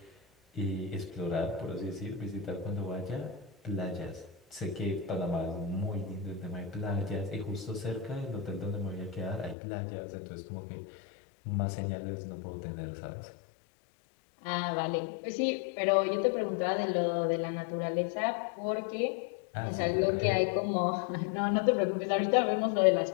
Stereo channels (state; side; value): drops out; right; at 9.6 s